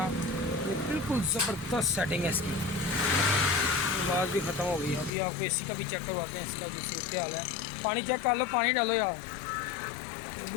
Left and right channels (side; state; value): right; drops out; at 5.1 s